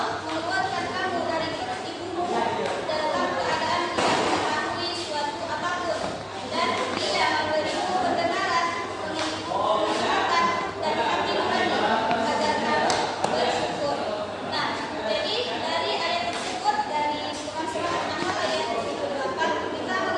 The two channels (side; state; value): both; identical; correlation 1.00